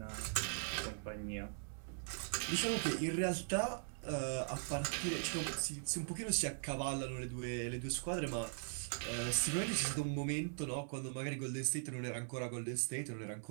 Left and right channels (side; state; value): left; silent; 51 dB below the other